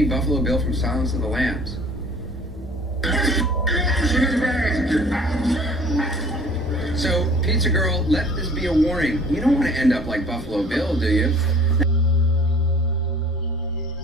Buffalo Bill from Silence of the Lambs. So, Pizza Girl, let this be a warning. You don't want to end up like Buffalo Bill, do you?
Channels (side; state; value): both; normal; correlation 0.50